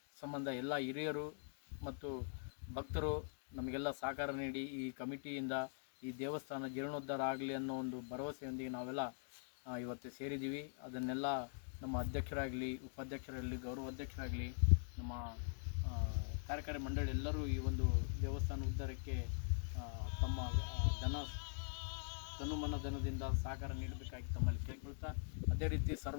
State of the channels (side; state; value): right; silent; digital silence